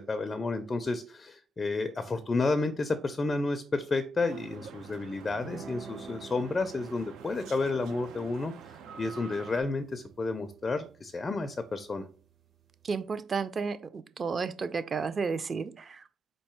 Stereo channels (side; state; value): both; normal; correlation 0.86